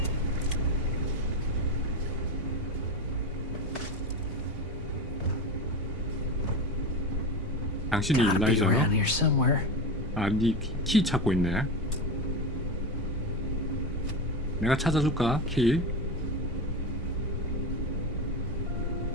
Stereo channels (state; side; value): normal; both; correlation 0.20